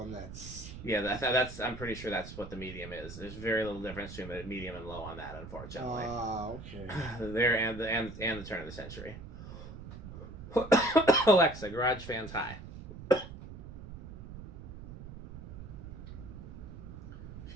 that's that's I'm pretty sure that's what the medium is. There's very little difference between the medium and low on that, unfortunately. Okay. There and the turn of the century. Alexa, garage fans high. She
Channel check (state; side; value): noise; right; rumble, 12 dB below the sound